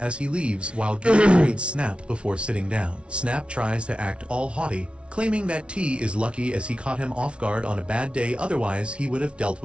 he leaves, while Gil greets Snap before sitting down. Snap tries to act all haughty, claiming that T is lucky as he caught him off guard on a bad day, otherwise he would have dealt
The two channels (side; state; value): left; late; 0.059 ms